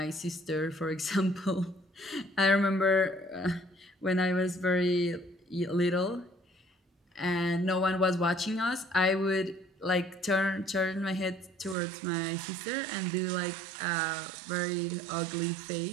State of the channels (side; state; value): left; drops out; at 11.8 s